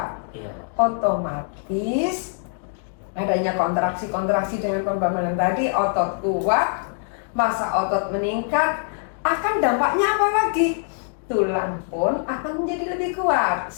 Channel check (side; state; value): right; silent; 62 dB below the other